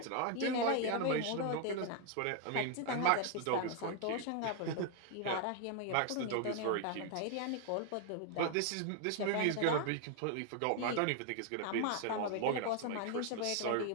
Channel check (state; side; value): different; both; correlation 0.00